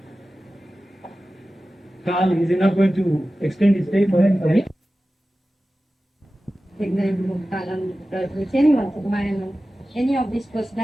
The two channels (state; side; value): normal; both; correlation 0.95